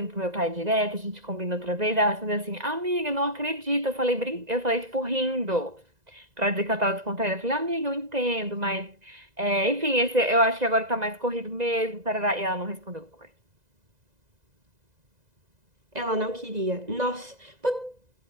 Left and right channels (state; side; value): late; left; 2.0 ms